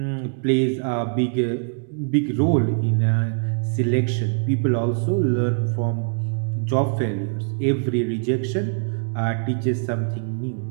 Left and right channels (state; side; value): silent; left; digital silence